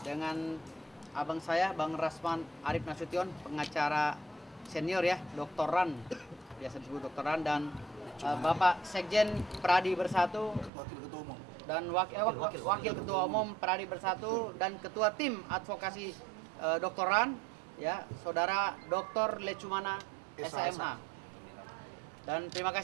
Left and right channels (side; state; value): left; drops out; at 10.7 s